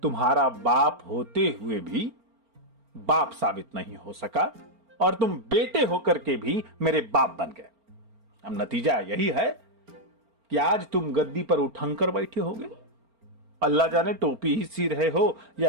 तुम्हारा बाप होते हुए भी बाप साबित नहीं हो सका और तुम बेटे होकर के भी मेरे बाप बन गए। अब नतीजा यही है कि आज तुम गद्दी पर उठंकर बैठे होगे। अल्लाह जाने टोपी ही सी रहे हो या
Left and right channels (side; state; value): left; late; 4.4 ms